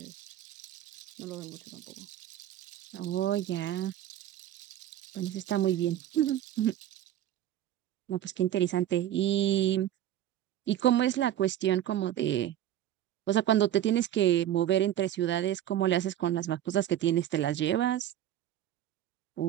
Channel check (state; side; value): quieter; left; 11.9 dB